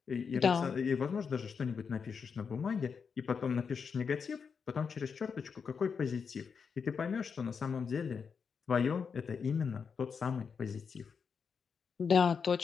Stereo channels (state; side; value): quieter; right; 6.0 dB